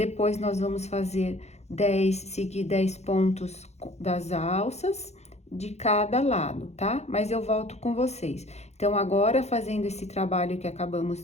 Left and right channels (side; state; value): right; late; 0.32 ms